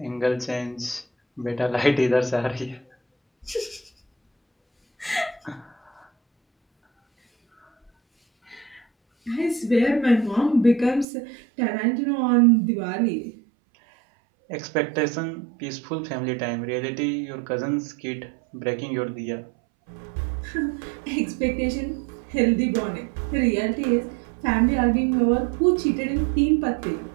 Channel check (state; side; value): drops out; left; at 11.1 s